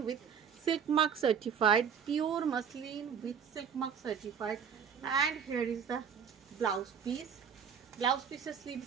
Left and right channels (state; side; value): quieter; left; 7.4 dB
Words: with silk mark certified, pure muslin with silk mark certified. And here is the blouse piece. Blouse পিসের